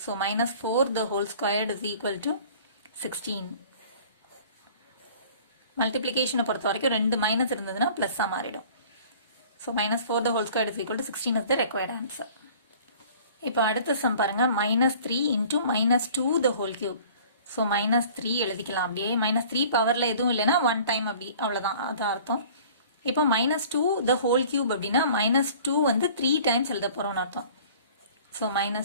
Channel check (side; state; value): both; inverted; correlation -0.48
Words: So -4 the whole squared is equal to 16. மல்டிப்ளிகேஷனை பொறுத்த வரைக்கும் 2 மைனஸ் இருந்ததுன்னா பிளஸ்ஸாக மாறிடும். So -4 the whole squared is equal to 16 is the required answer. இப்போ அடுத்த சம் பாருங்க, -3 into -2 the whole cube. So -3 எழுதிக்கலாம் அப்படியே. -3 பவர்ல எதுவும் இல்லைன்னா 1 time அப்படி, அவ்வளோதான், அது அர்த்தம். இப்போ -2 the whole cube அப்படின்னா -2 வந்து 3 times எழுத போறோம்னு அர்த்தம். ஸோ